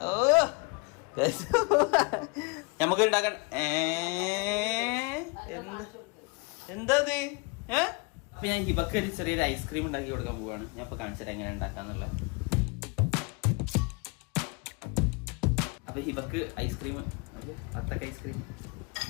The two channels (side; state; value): right; quieter; 30.3 dB